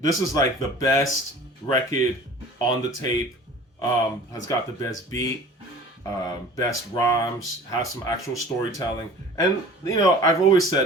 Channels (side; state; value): both; normal; correlation 0.43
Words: This is like the best record on the tape. Has got the best beat, best rhymes, has some actual storytelling. And, you know, I've always